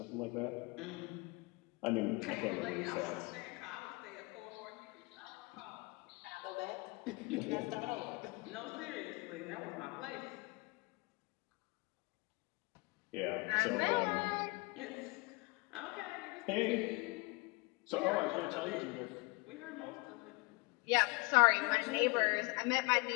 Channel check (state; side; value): quieter; right; 26.8 dB